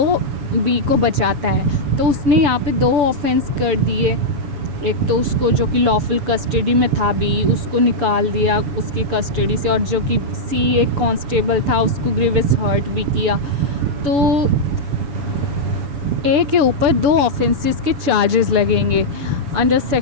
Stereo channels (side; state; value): left; late; 7.0 ms